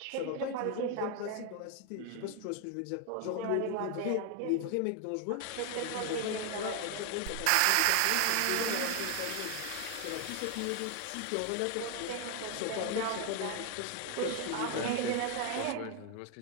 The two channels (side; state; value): both; different; correlation 0.00